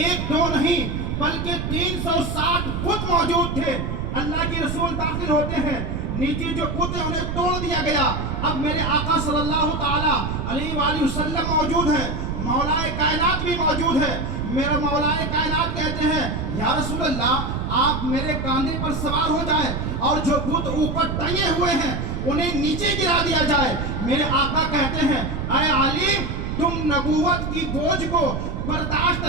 دو نہیں بلکہ 360 بت موجود تھے. اللہ کے رسول داخل ہوتے ہیں, نیچے جو بت ہے انہیں توڑ دیا گیا. اب میرے آقا صلی اللہ تعالیٰ علیہ وآلہ وسلم موجود ہے, مولا کائنات بھی موجود ہے. میرا مولا کائنات کہتے ہیں یا رسول اللہ آپ میرے کاندھے پر سوار ہو جائیں اور جو بت اوپر ٹنگے ہوئے ہیں انہیں نیچے گرا دیا جائے. میرے آقا کہتے ہیں اے علی تم نبوت کی بوجھ کو برداشت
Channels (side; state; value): right; noise; rumble, 3 dB below the sound